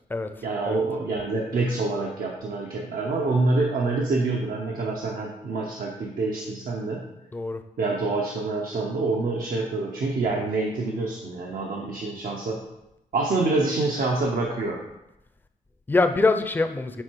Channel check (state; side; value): normal; both; correlation 0.65